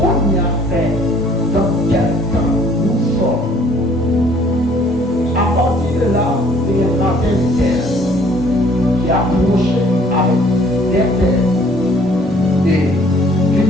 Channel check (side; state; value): both; normal; correlation 0.58